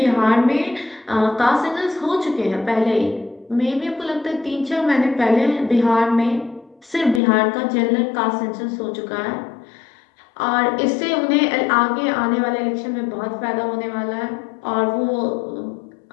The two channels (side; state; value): right; drops out; at 7.2 s